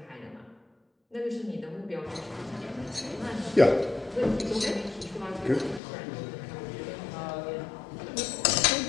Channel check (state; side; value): drops out; right; at 5.8 s